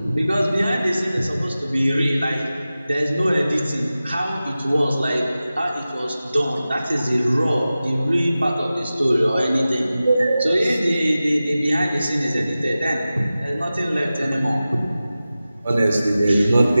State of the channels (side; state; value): both; inverted; correlation -0.95